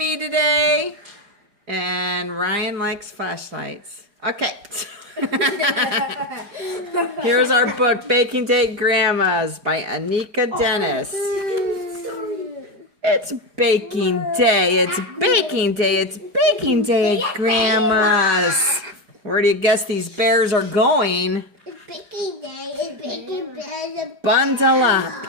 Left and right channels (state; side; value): late; left; 4.9 ms